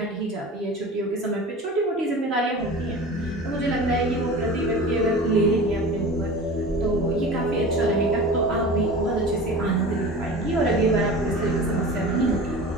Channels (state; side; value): normal; both; correlation 0.36